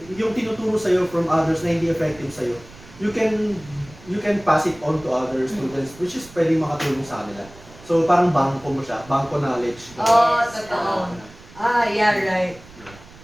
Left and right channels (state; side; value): noise; right; rumble, 21 dB below the sound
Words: yung tinuturo sa'yo from others na hindi effective sa'yo, you can pass it on to other students, which is pwede makatulong sa kanila. So, parang bangko mo siya, bangko knowledge. Oh, Yes. totoo. Yeah, right.